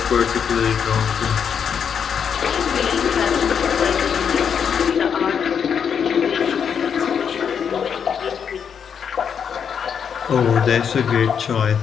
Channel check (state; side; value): quieter; right; 7.3 dB